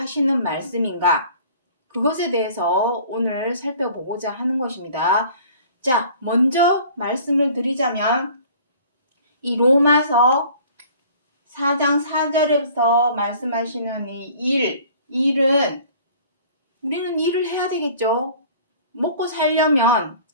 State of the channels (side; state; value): both; inverted; correlation -0.50